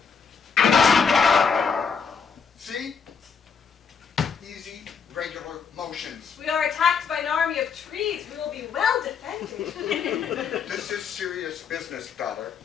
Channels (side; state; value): right; quieter; 6.1 dB